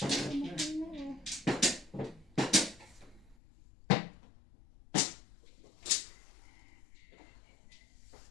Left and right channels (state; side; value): drops out; right; at 3.4 s